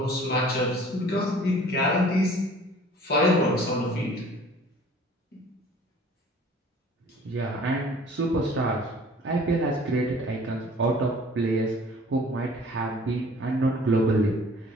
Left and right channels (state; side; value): normal; both; correlation 0.50